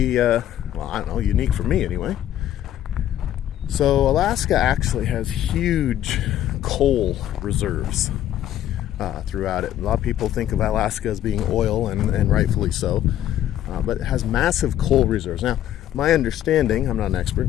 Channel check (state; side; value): quieter; right; 11.8 dB